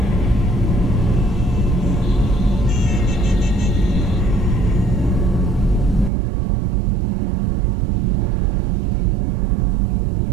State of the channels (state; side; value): drops out; left; at 6.1 s